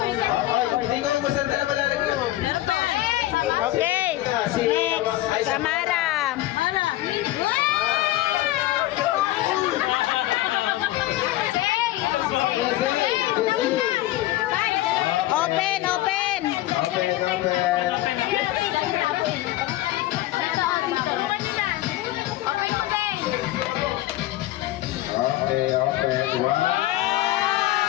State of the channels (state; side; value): quieter; right; 16.0 dB